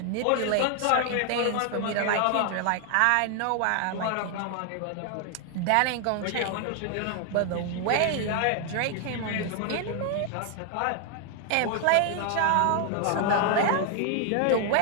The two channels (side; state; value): both; different; correlation 0.00